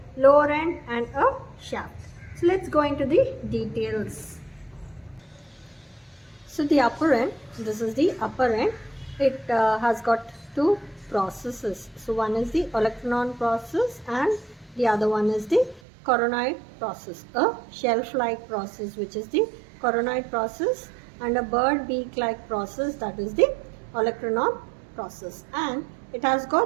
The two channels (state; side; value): drops out; left; at 15.8 s